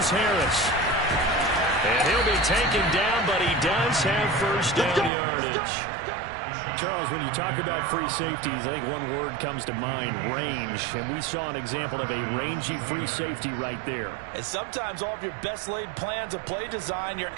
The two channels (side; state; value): left; drops out; at 5.1 s